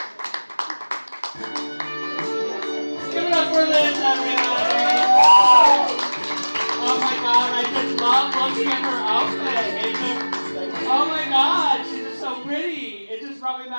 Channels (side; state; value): both; inverted; correlation -1.00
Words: Give it up for Liz, everybody. Oh my God, I just love looking at her outfit. It's just, oh my God, she's just so pretty. It just brought me